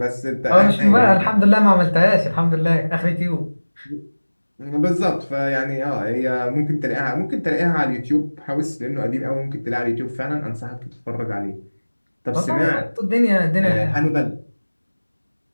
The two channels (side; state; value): both; inverted; correlation -1.00